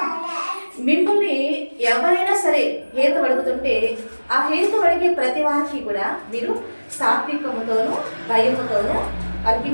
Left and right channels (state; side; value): inverted; both; correlation -1.00